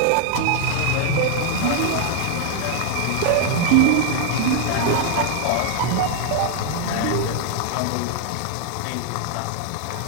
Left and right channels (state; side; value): different; both; correlation 0.00